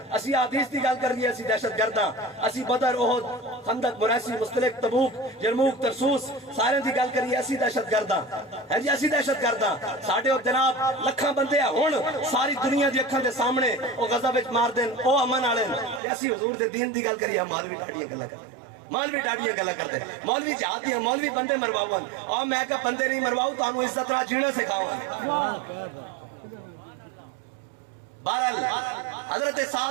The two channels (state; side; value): drops out; left; at 16.0 s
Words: اسی حدیث دی گل کریے اسی دہشت گرد ہاں اسی بدر احد خندق مریسی مستلق تبوک یرموک ترسوس سارے دی گل کریے اسی دہشت گرد ہاں ہے جی اسی دہشت گرد ہاں ساڈے او جناب لکھاں بندے ہن ساری دنیا دی اکھاں دے سامنے او غزہ وچ مار دین او امن والے اسی حضور دے دین دی گل کریے مولوی ڈاڈیاں گلاں کردے مولوی ڈاڈیاں گلاں کردے مولوی جہاد دیاں مولوی بندے مرواون اور میں کہ بندے نہیں مرواؤ تانوں عزت نال جینا سکھاواں بہرحال حضرت